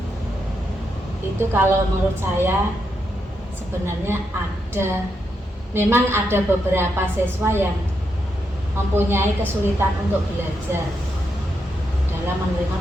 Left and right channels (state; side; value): normal; both; correlation 0.82